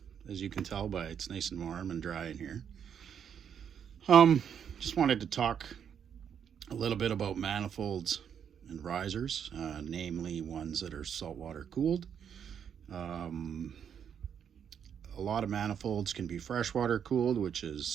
As you can tell by it's nice and warm and dry in here. Just wanted to talk a little bit about manifolds and risers, namely ones that are saltwater cooled. A lot of manifolds can be freshwater cooled, which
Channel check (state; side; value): quieter; left; 8.1 dB